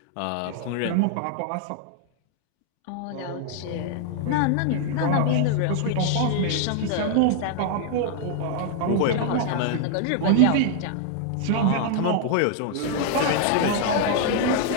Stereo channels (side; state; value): both; different; correlation 0.00